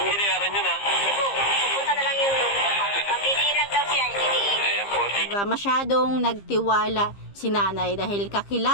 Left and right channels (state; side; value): late; right; 15 ms